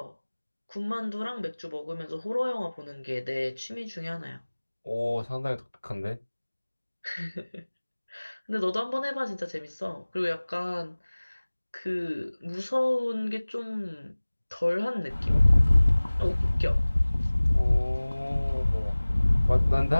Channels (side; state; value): both; inverted; correlation -1.00